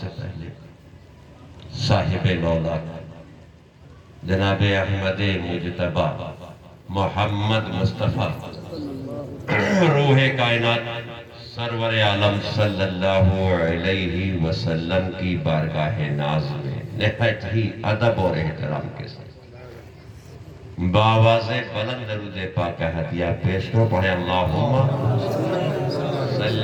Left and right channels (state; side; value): identical; both; correlation 1.00